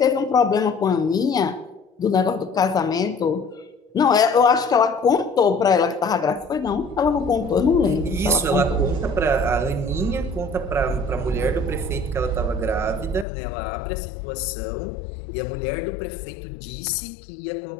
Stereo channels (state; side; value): drops out; right; at 13.2 s